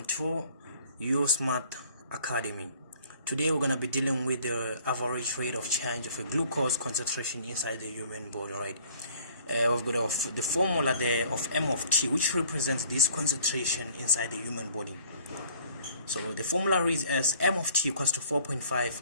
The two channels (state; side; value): inverted; both; correlation -0.54